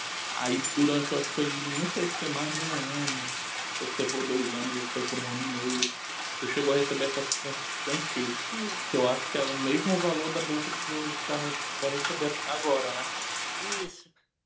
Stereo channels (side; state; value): both; identical; correlation 1.00